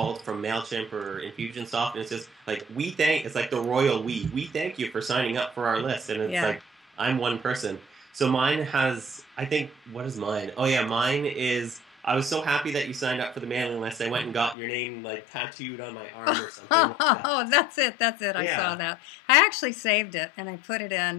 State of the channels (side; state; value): right; drops out; at 14.6 s